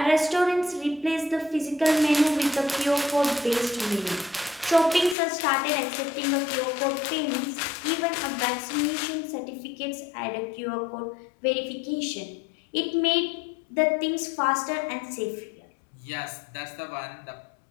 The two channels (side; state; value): right; drops out; at 5.2 s